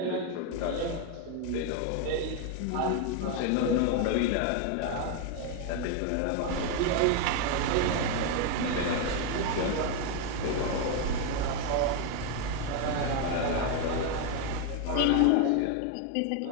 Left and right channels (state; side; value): different; both; correlation 0.01